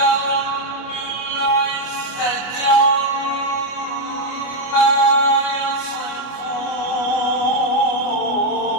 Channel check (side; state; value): right; late; 24 ms